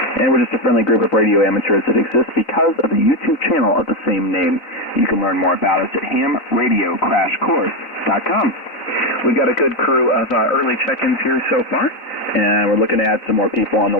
and we're just a friendly group of radio amateurs that exists because of the YouTube channel of the same name. You can learn more about us at hamradiocrashcourse.com. We've got a good crew of early check-ins here so far, and we're looking to add some more people on the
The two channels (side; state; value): right; late; 4.0 ms